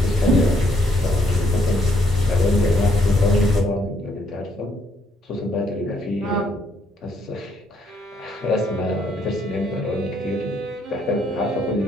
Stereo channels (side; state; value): both; normal; correlation 0.71